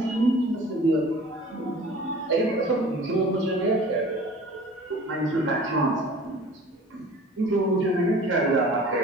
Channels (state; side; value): normal; both; correlation 0.45